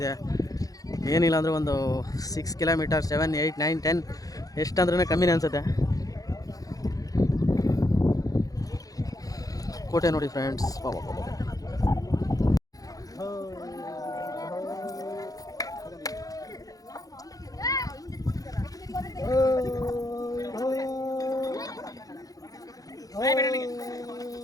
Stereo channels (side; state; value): right; late; 0.17 ms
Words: ಏನಿಲ್ಲ ಅಂದರೆ ಒಂದು 6 ಕಿಲೋಮೀಟರ್, 7, 8, 9, 10 ಎಷ್ಟಂದ್ರೂ ಕಮ್ಮಿನೇ ಅನಿಸುತ್ತೆ. ಕೋಟೆ ನೋಡಿ ಫ್ರೆಂಡ್ಸ್.